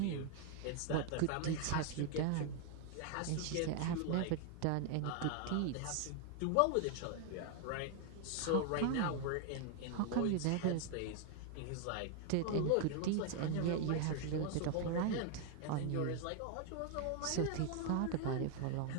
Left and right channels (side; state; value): both; different; correlation 0.00